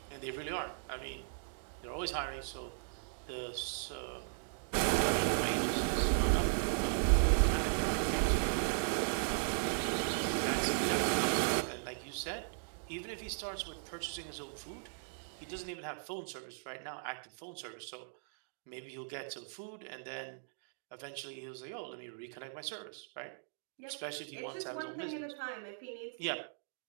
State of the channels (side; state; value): left; silent; digital silence